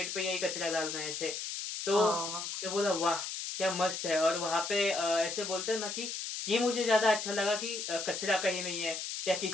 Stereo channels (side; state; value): left; noise; hiss, 5 dB below the sound